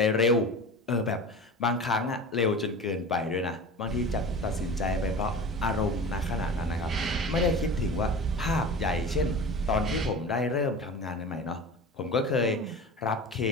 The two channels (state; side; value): normal; both; correlation 0.34